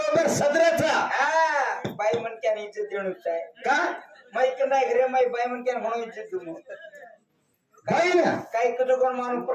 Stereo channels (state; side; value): identical; both; correlation 1.00